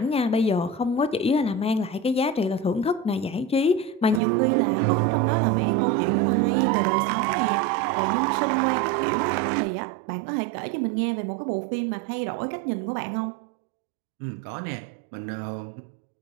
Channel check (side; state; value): left; drops out; at 4.2 s